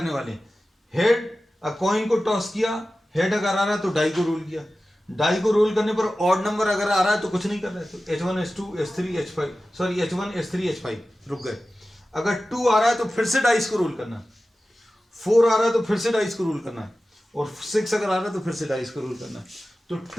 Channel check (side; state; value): both; normal; correlation 0.95